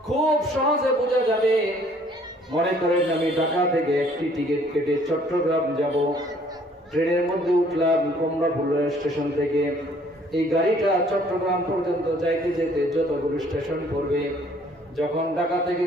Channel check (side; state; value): both; normal; correlation 0.59